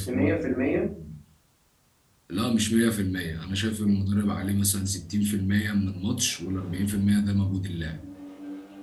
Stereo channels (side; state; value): both; identical; correlation 1.00